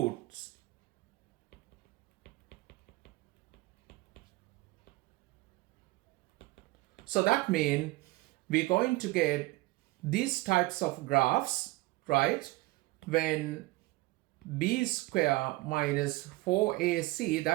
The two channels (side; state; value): left; quieter; 21.0 dB